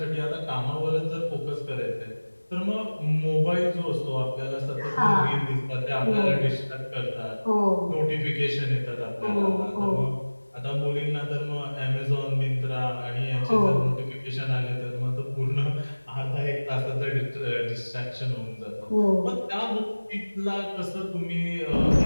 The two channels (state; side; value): inverted; both; correlation -1.00